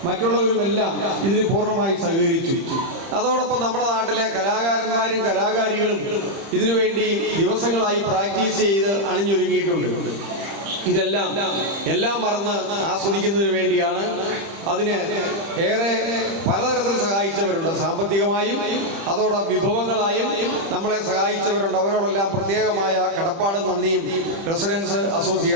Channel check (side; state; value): left; late; 30 ms